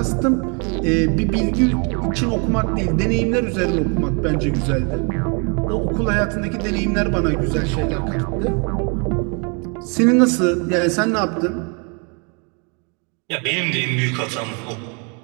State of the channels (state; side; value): quieter; left; 34.9 dB